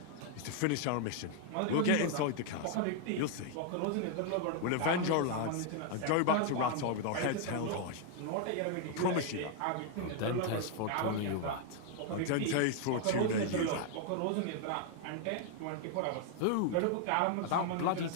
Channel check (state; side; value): different; both; correlation 0.00